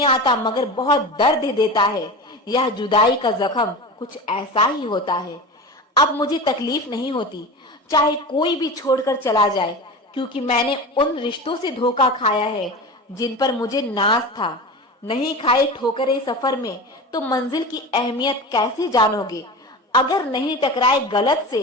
आता मगर बहुत दर्द देता है। यह जुदाई का जख्म कुछ ऐसा ही होता है। अब मुझे तकलीफ नहीं होती चाहे कोई भी छोड़कर चला जाए, क्योंकि मैंने उन रिश्तों से धोखा खाया है जिन पर मुझे नाज था। नहीं खाए ठोकरे सफर में तो मंजिल की अहमियत कैसे जानोगे? अगर नहीं टकराए गलत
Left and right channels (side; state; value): both; normal; correlation 0.29